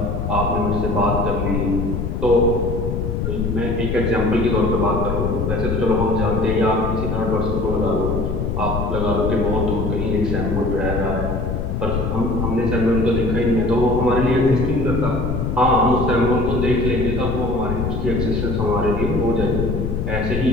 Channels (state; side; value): noise; left; rumble, 2 dB below the sound